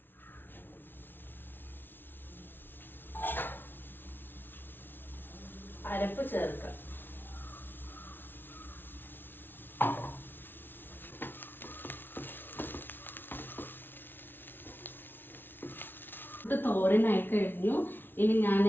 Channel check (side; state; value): right; late; 0.10 ms